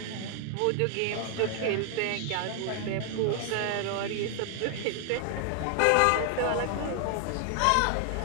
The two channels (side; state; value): both; different; correlation 0.00